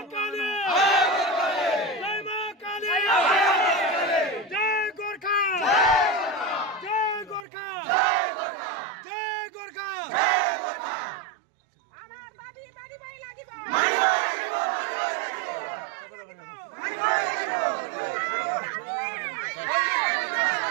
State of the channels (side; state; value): left; drops out; at 7.5 s